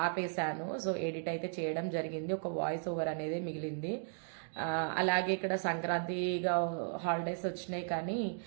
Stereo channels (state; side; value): silent; left; digital silence